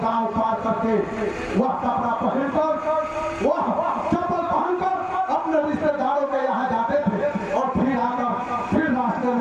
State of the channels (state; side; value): identical; both; correlation 1.00